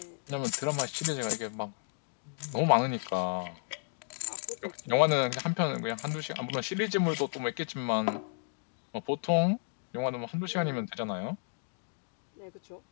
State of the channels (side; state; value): right; silent; digital silence